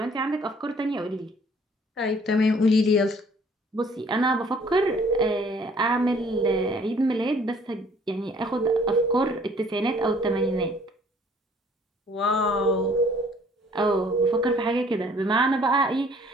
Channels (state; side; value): normal; both; correlation 0.57